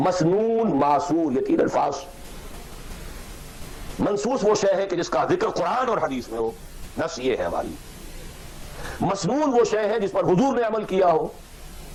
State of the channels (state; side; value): identical; both; correlation 1.00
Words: معصور، یہ تین الفاظ. منصوص وہ شے ہے کہ جس کا ذکر قرآن اور حدیث میں ہو، نص یہ ہے ہماری. مسنون وہ شے ہے جس پر حضور نے عمل کیا ہو.